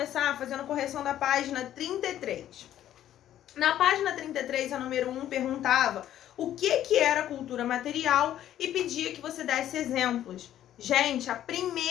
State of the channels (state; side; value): quieter; right; 11.8 dB